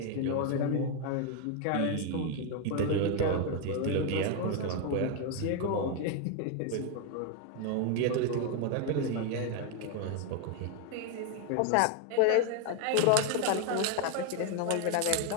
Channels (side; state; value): both; different; correlation 0.01